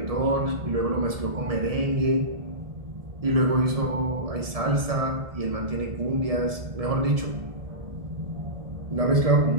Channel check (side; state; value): left; late; 1.7 ms